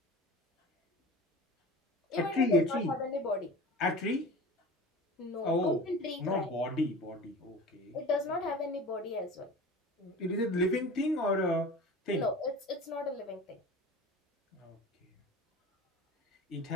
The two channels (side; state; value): both; normal; correlation 0.37